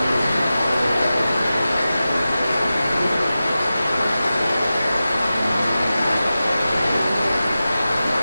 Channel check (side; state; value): both; inverted; correlation -0.94